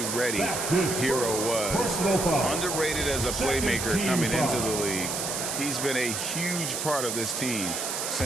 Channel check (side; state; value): right; noise; hiss, 3 dB below the sound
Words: ready Hero was. Underrated as a playmaker coming into the league. He's been a huge part of this team